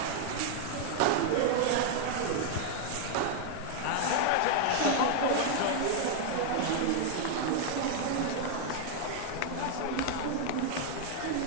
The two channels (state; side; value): different; both; correlation 0.00